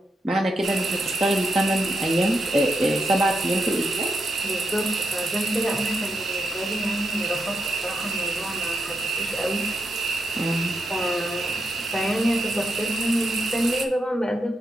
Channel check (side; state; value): both; normal; correlation 0.83